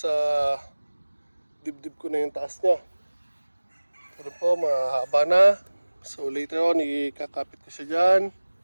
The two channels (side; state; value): both; inverted; correlation -1.00